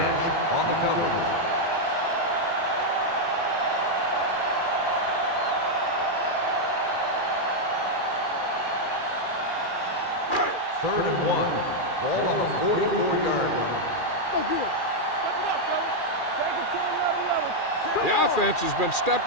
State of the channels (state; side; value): late; right; 2.4 ms